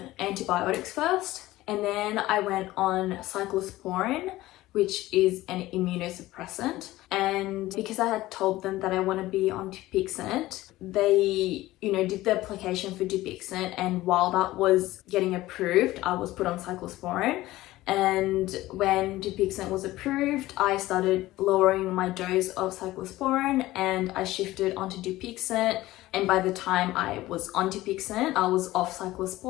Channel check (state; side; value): quieter; right; 17.0 dB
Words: antibiotics first. And then I went on cyclosporin, which is an immunosuppressant. And because I had told them that I want to be on Dupixent, they, did the application for Dupixent. And while that was getting approved, I was put on cyclosporin. And when Dupixent was approved, I started lowering my dose of cyclosporin and I shifted onto Dupixent. And by the time I was on Dupixent, I was off